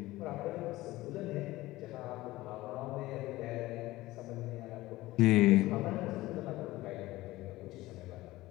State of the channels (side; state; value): right; quieter; 18.0 dB